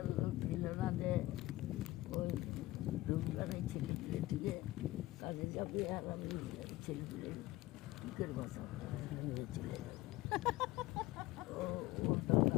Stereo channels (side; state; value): right; quieter; 17.8 dB